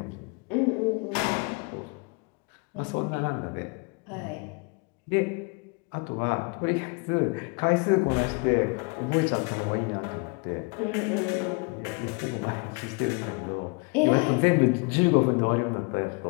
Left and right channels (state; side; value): quieter; right; 31.9 dB